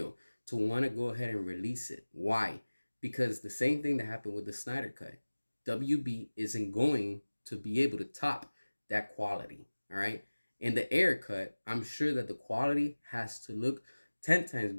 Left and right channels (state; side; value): inverted; both; correlation -1.00